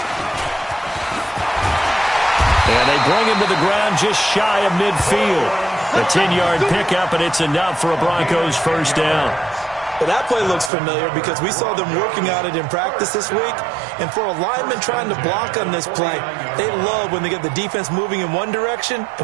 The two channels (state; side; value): drops out; left; at 10.7 s